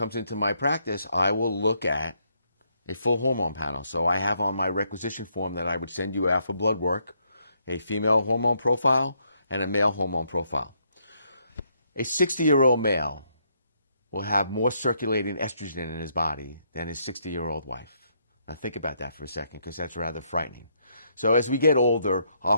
into my practice, I will look at a full hormone panel. So I have on my requisition form that I would send you out for blood work a female hormone profile and a male hormone profile. A 60-year-old male will have more circulating estrogen in his body than his 60-year-old wife. Now think about that for a second, because that's rather frightening. So as we get older, our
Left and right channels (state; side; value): inverted; both; correlation -0.74